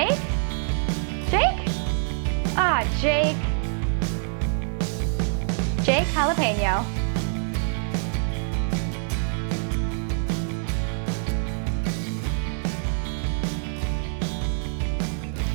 Jake? Jake. Jake Jalapeno.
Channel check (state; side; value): silent; left; digital silence